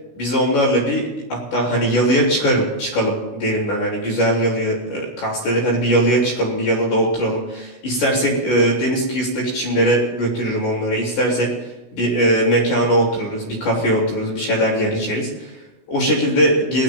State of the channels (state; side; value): late; right; 16 ms